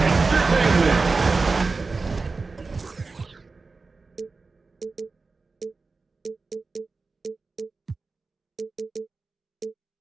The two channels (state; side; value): quieter; left; 4.0 dB